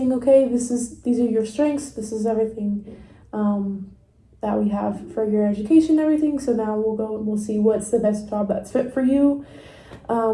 okay, these are your strengths, this is everything that we have for your education and everything. So now we'll go and we'll see what's the best job that's fit for you.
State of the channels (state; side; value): identical; both; correlation 1.00